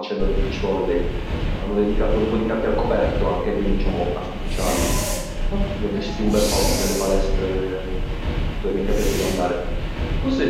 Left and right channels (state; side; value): identical; both; correlation 1.00